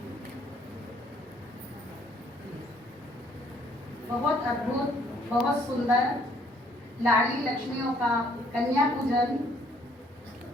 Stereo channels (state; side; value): normal; both; correlation 0.64